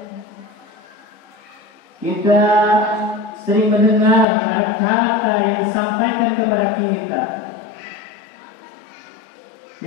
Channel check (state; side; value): drops out; right; at 4.2 s